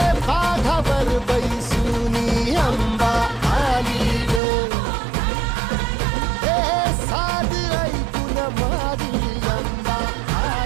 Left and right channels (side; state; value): left; drops out; at 4.4 s